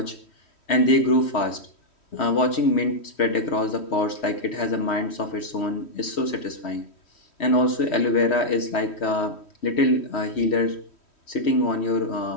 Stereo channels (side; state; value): right; late; 3.1 ms